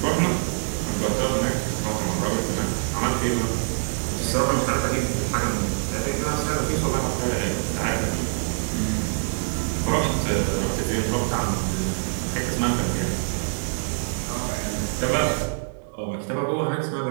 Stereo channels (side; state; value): left; silent; digital silence